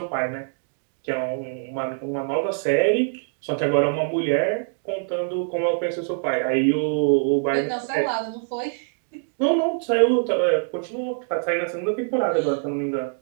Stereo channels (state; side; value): silent; left; digital silence